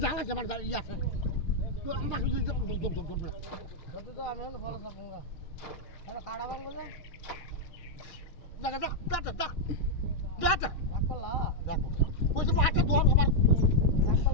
জাল আছে আমার ইয়া আছে তো আমরা শুধু কত তো আমি হলো ফল সব গঙ্গা আরে কাড়া বাং বলে দেখা দা রাখলা দেখো ওই যে পাটা দোর আমার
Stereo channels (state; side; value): late; right; 6.6 ms